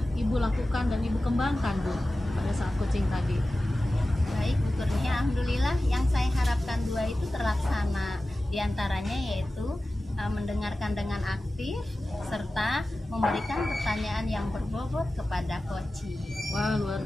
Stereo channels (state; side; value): normal; both; correlation 0.95